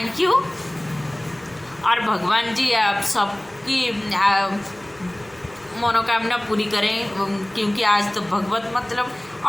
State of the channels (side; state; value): right; noise; rumble, 28 dB below the sound